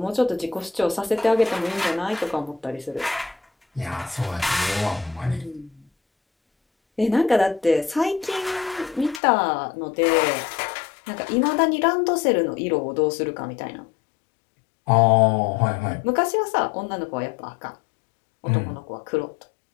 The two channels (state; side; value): drops out; right; at 9.2 s